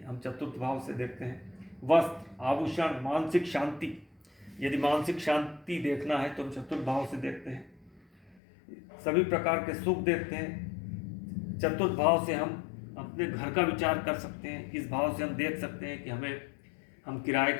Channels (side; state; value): right; drops out; at 8.4 s